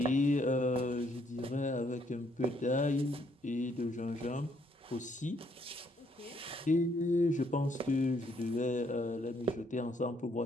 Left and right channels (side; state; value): both; normal; correlation 0.69